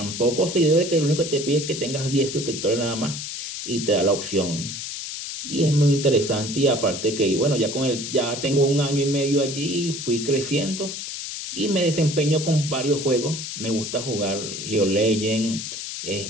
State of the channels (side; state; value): left; noise; hiss, 7 dB below the sound